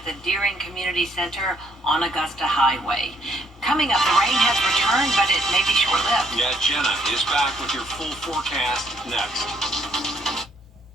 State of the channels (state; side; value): normal; both; correlation 0.69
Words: the Deering Community Center on Augusta Highway. Coming up, the rain has returned, but it may be short-lived. Yeah, Jenna is back with your full forecast next.